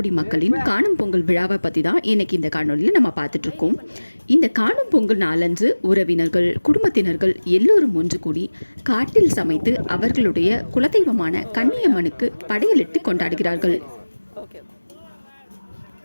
மக்களின் காணும் பொங்கல் விழாவை பற்றி தான் இன்னைக்கு இந்த காணொலியில் நம்ம பார்த்துட்ருக்கோம். இந்த காணும் பொங்கல் நாளன்று உறவினர்கள், குடும்பத்தினர்கள் எல்லோரும் ஒன்று கூடி காட்டில் சமைத்து அவர்களுடைய குலதெய்வமான கன்னியம்மனுக்கு படையலிட்டு கொண்டாடுகிறார்கள்.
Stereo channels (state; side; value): inverted; both; correlation -1.00